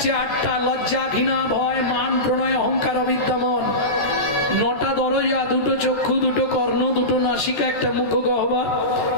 8টা। লজ্জা, ঘৃণা, ভয়, মান, প্রণয়, অহংকার, অবিদ্যামন। 9টা দরজা, দুটো চক্ষু, দুটো কর্ণ, দুটো নাসিকা, একটা মুখ গহ্বর,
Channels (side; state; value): right; late; 13 ms